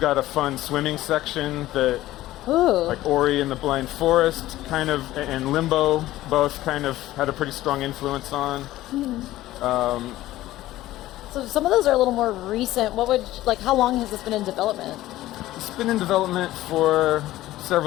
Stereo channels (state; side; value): quieter; right; 15.7 dB